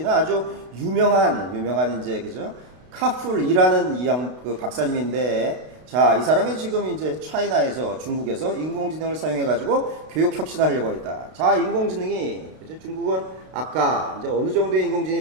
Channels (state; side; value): late; left; 32 ms